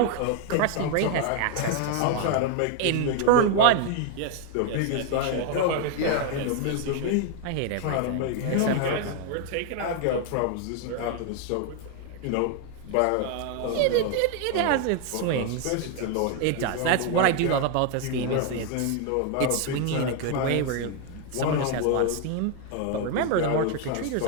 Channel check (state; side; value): different; both; correlation 0.01